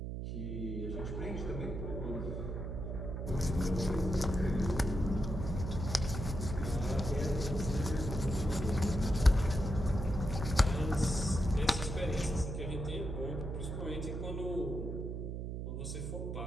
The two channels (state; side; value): noise; right; hum, 4 dB below the sound